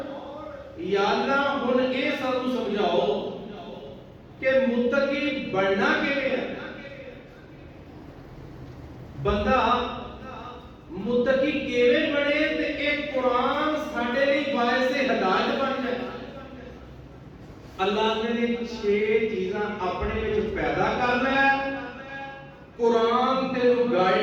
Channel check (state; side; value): identical; both; correlation 1.00